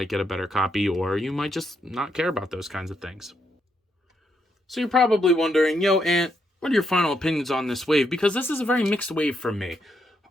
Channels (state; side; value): normal; both; correlation 0.78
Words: get a better copy, or you might just not care about those kinds of things. So you're probably wondering, yo, Ant, what are your final opinions on this wave? Because this is a very mixed wave for me.